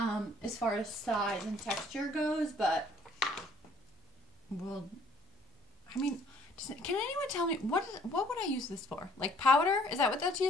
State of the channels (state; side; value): normal; both; correlation 0.59